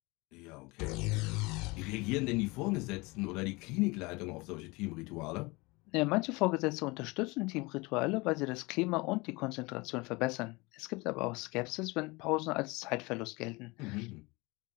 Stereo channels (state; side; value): quieter; right; 24.7 dB